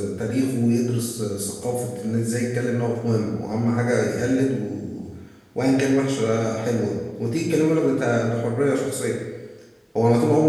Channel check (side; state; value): both; identical; correlation 1.00